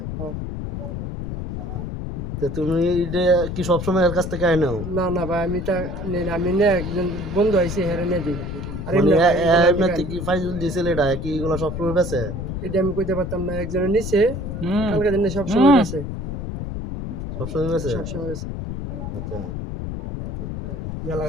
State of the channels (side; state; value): left; noise; rumble, 5 dB below the sound